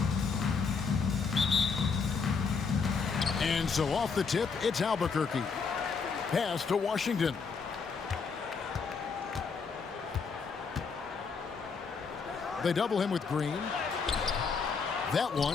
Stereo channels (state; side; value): quieter; right; 5.4 dB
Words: And so off the tip, it's Albuquerque. Pass to Washington. They double him with Green. That